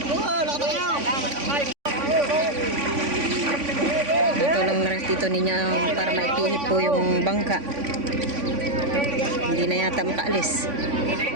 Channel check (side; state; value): left; late; 3.5 ms